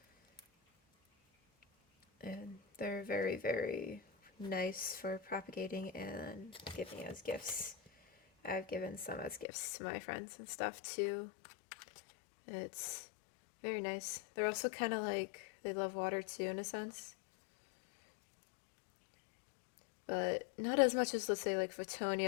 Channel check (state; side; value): drops out; right; at 9.5 s